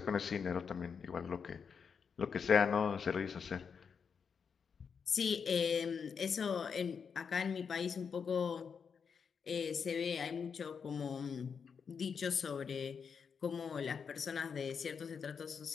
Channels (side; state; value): right; quieter; 6.3 dB